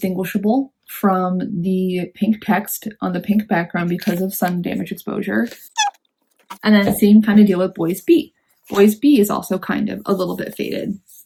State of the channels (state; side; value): identical; both; correlation 1.00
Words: from the pink text on the pink background because of sun damage exposure. And then same kind of deal with Boys B. Boys B is also kind of a little bit faded